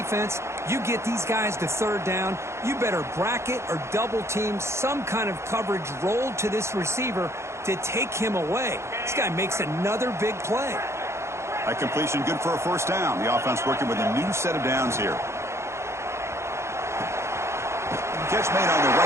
you get these guys to 3rd down, you better bracket or double team some kind of coverage rolled to this receiver to take him away. This guy makes another big play. That completion good for a 1st down. The offense working with a new set of downs here. Catch made on the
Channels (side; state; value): left; late; 0.13 ms